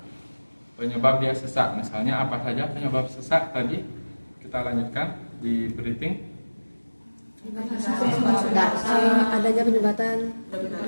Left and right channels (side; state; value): both; inverted; correlation -1.00